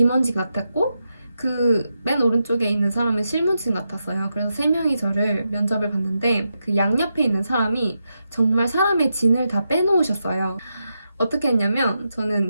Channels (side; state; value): both; inverted; correlation -0.86